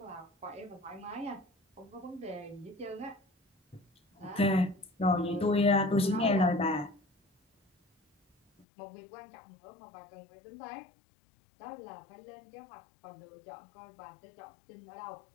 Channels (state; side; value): drops out; right; at 8.7 s